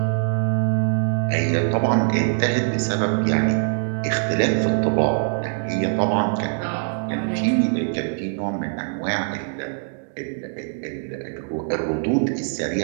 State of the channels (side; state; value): left; silent; digital silence